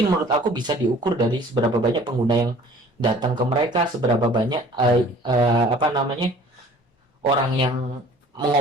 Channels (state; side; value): normal; both; correlation 0.50